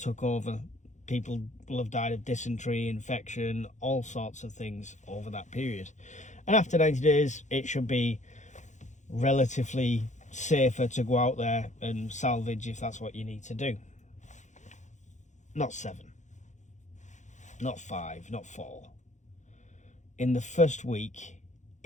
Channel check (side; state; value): right; late; 0.35 ms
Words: over. People will have died of dysentery, infection, all sorts of things over that period. And after 90 days, it should be relatively safer to go out there and salvage if that's what you need to do. Not 7, not 5, not 4. In the first week,